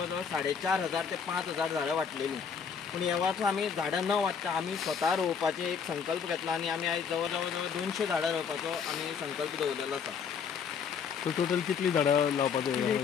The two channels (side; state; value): right; quieter; 6.6 dB